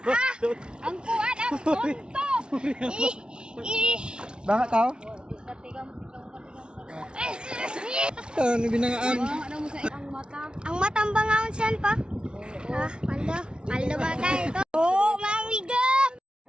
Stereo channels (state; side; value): late; left; 0.055 ms